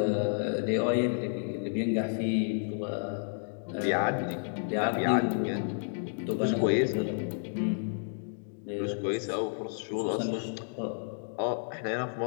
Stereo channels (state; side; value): silent; right; digital silence